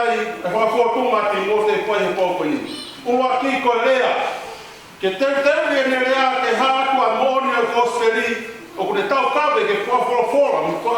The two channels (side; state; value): both; identical; correlation 1.00